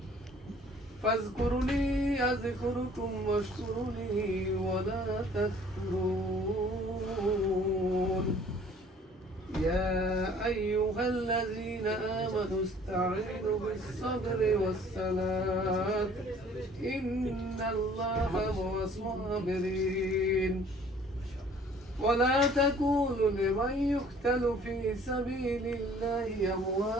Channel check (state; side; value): normal; both; correlation 0.54